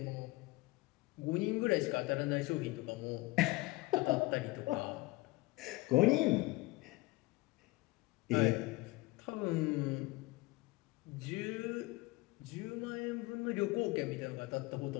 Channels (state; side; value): quieter; right; 21.5 dB